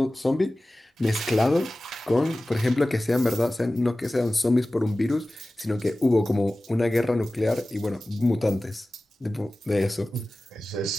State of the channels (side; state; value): both; normal; correlation 0.97